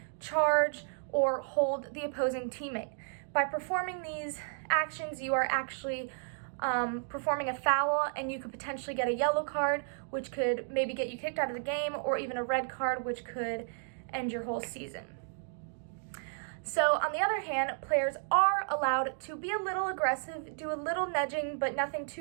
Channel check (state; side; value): silent; left; digital silence